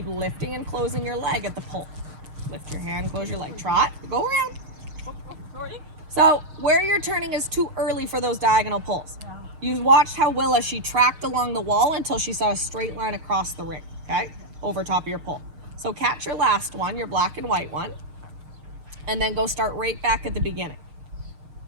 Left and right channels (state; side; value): late; left; 6.5 ms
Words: lifting and closing your leg at the pull. Lift your hand, close your leg. Trot. Go around. So where you're turning is too early for those diagonal pulls. Yeah. You watched how Willa, she tracked along the wall until she saw a straight line across the ring, okay? Over top of your pull. So catch your last one, your black and white one, and then go start right back at the beginning.